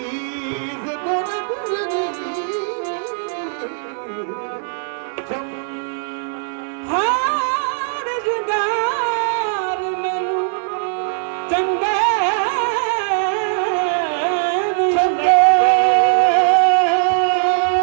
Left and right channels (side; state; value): left; silent; digital silence